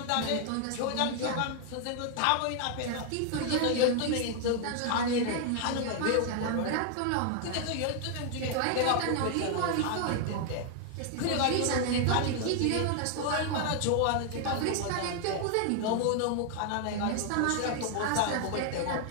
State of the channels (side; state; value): both; different; correlation 0.00